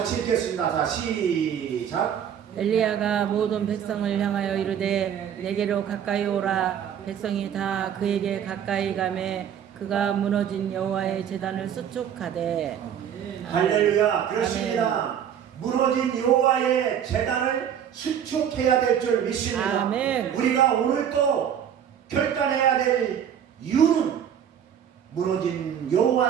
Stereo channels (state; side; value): quieter; left; 9.0 dB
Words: 읽겠습니다. 자, 시작. 엘리야가 모든 백성을 향하여 이르되 내게로 가까이 오라. 백성이 다 그에게 가까이 가매 그가 무너진 여호와의 제단을 수축하되. 할렐루야. 그렇습니다. 무너진 여호와의 제단을 수축해야 될 줄 믿습니다. 아멘. 우리가 오늘 또 결단해야 될 이유는 무너진